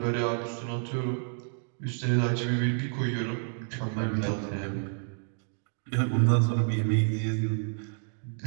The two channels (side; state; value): left; silent; 55 dB below the other